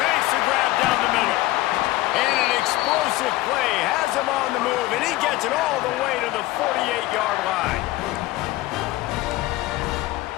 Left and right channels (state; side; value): quieter; right; 17.6 dB